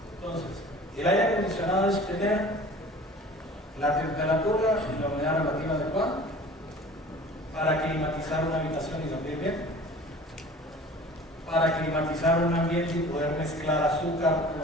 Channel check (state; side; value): normal; both; correlation 0.44